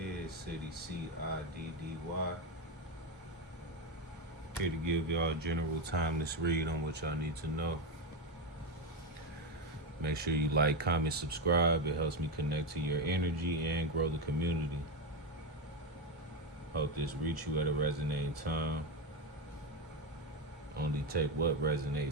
CIDDY, CIDDY. Here to give y'all a general timeless read on what y'all need to know. Make sure you like, comment, subscribe. It helps me connect to your energy and grow the community. Hope this reach you at a resonating time. Only take what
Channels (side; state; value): both; normal; correlation 0.10